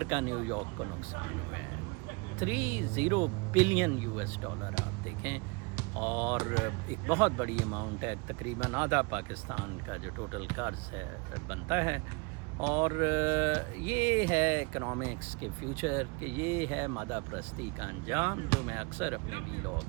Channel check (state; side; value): quieter; left; 28.8 dB